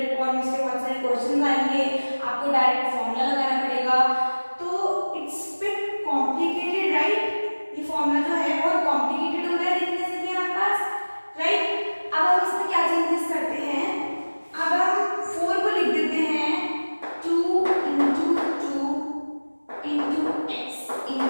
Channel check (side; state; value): both; inverted; correlation -1.00